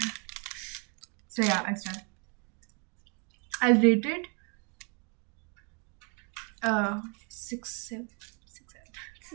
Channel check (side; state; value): left; quieter; 35.6 dB